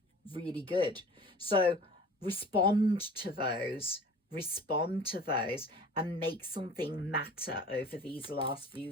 really good. So respond to those, and make something matter over these last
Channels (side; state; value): both; normal; correlation 0.43